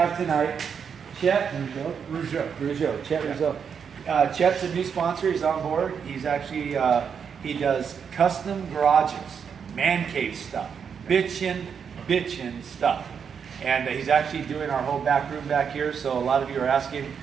tonight Chet Rougeau. Chet Rougeau. Chet's a new sponsor. He's on board. He's actually he does custom garages, man cave stuff, bitchin' stuff. And he's actually doing our whole back room back here. So a lot of you are asking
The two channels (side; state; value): left; quieter; 6.9 dB